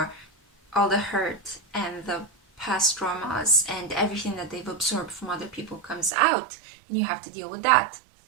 all the hurt and the past traumas and everything that they've absorbed from other people comes out, and you have to deal with that.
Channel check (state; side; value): drops out; left; at 6.1 s